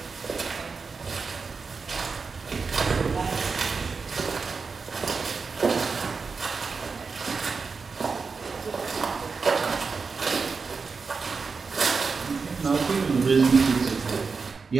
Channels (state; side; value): quieter; left; 4.9 dB